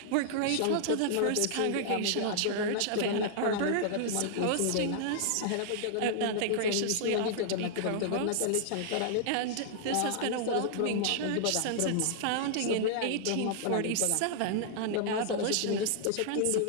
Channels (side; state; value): both; different; correlation -0.01